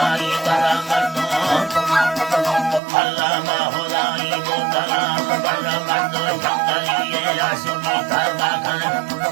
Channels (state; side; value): drops out; left; at 2.8 s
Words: baramatno Allah mahulai botala baramatno changaliye ashimi karba kan